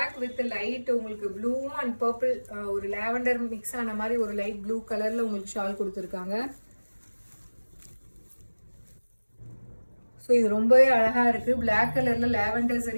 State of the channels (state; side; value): inverted; both; correlation -1.00